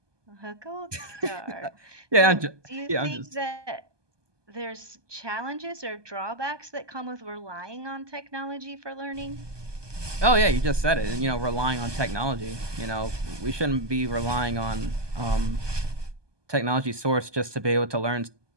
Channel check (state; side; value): late; left; 1.2 ms